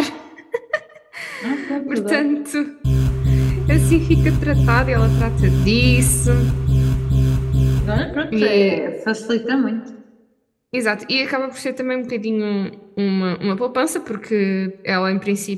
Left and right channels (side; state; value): both; identical; correlation 1.00